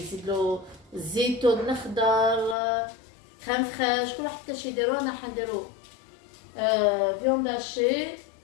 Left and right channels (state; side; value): drops out; right; at 2.6 s